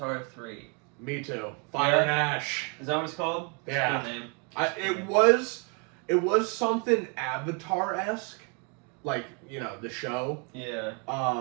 3. Me too. Fire and Ash. Is that what it's called? It's a Yeah. good name. It was something Avatar-esque, like the show. Yeah.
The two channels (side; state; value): left; quieter; 34.8 dB